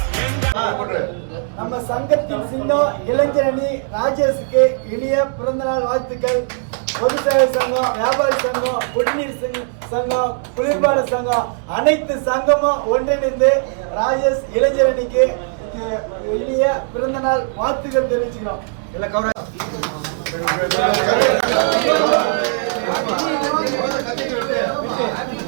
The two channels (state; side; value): silent; left; 64 dB below the other